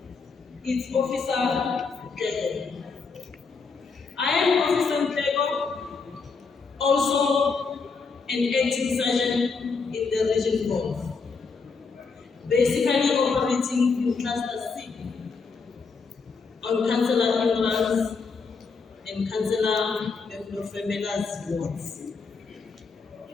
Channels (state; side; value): quieter; right; 4.8 dB